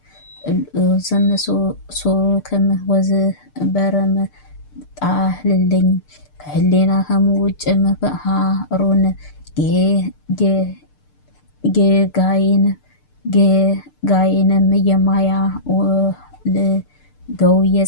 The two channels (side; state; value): right; late; 6.7 ms